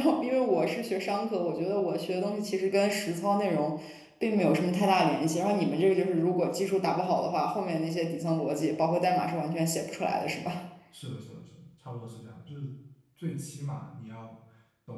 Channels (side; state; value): both; identical; correlation 1.00